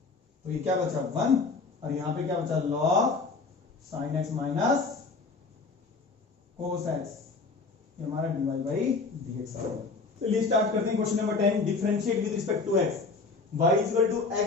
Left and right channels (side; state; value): right; quieter; 4.1 dB